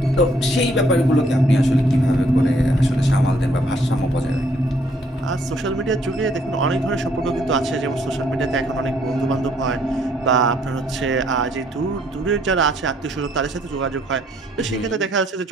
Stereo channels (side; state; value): both; normal; correlation 0.66